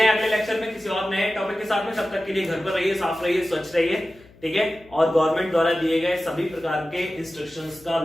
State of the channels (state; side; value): noise; left; hum, 25 dB below the sound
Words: अगले लेक्चर में किसी और नए टॉपिक के साथ में। तब तक के लिए घर पर रहिए, साफ रहिए, स्वच्छ रहिए, ठीक है। और गवर्नमेंट द्वारा दिए गए सभी प्रकार के इंस्ट्रक्शंस का,